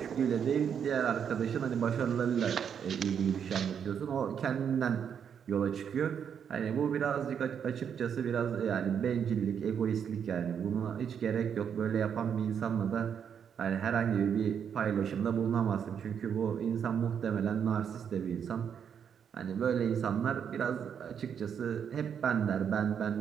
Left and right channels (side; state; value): left; quieter; 7.8 dB